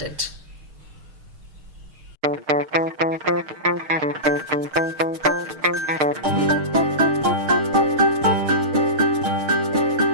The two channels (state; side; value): late; left; 6.5 ms